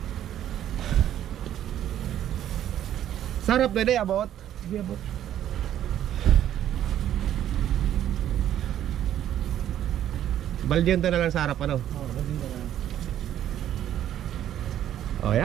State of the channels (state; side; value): quieter; left; 11.3 dB